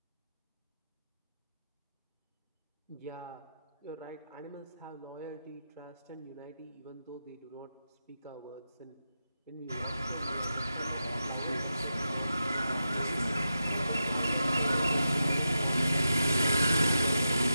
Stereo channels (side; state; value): both; inverted; correlation -0.88